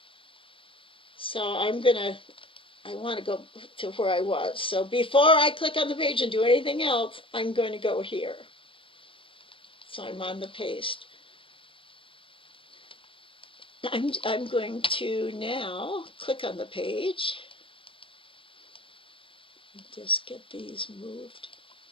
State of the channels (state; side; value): late; right; 0.25 ms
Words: So I want to go to where I was. So before I click on the page and do anything else, I'm going to go here. So I'm on the paste. I'm going to now click on the page. Just get these moved.